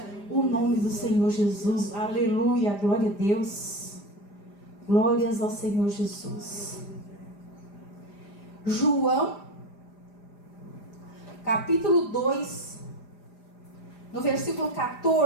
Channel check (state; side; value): late; right; 4.9 ms